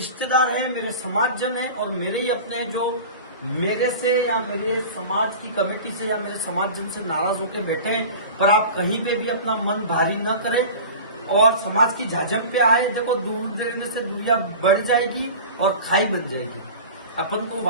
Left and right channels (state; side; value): inverted; both; correlation -0.36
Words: हैं, मेरे समाजजन हैं और मेरे ही अपने हैं जो मेरे से या मेरे समाज की कमेटी से या मेरे समाजजन से नाराज होकर बैठे हैं। पर आप कहीं पे भी अपना मन भारी न करें और समाज की झाझम पे आए। देखो, दूर देने से दुनिया बढ़ जाएगी और खाई बन जाएगी। अपन को